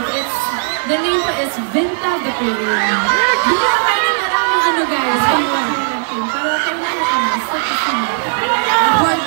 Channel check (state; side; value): silent; left; 56 dB below the other